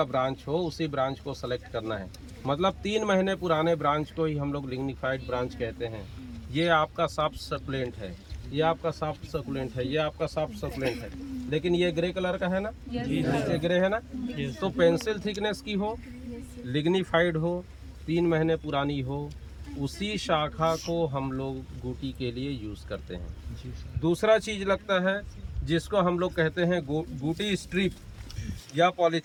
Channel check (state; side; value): identical; both; correlation 1.00